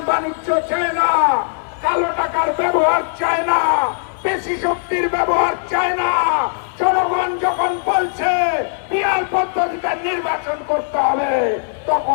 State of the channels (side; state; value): right; silent; digital silence